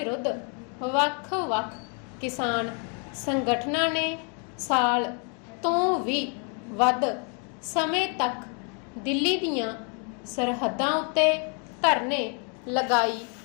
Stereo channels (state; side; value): quieter; right; 38.9 dB